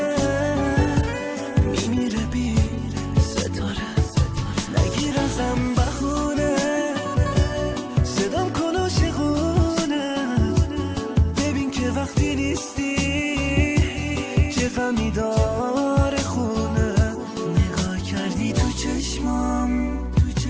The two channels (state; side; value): identical; both; correlation 1.00